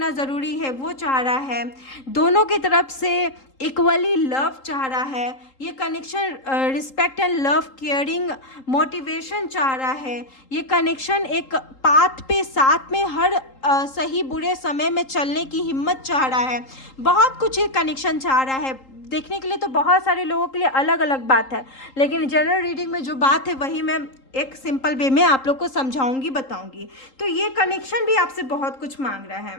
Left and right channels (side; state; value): right; late; 3.8 ms